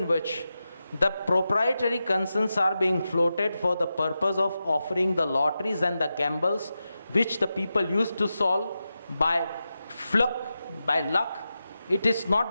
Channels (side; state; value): both; inverted; correlation -0.91